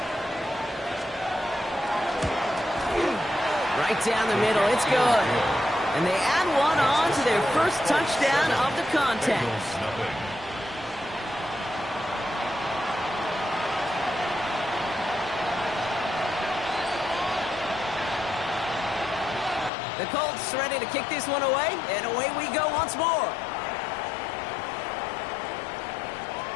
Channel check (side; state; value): right; drops out; at 19.7 s